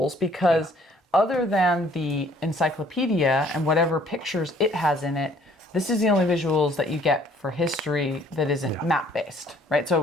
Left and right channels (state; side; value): normal; both; correlation 0.59